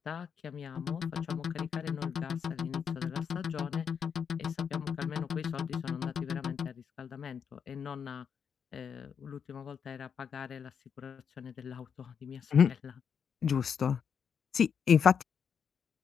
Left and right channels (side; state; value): right; quieter; 7.1 dB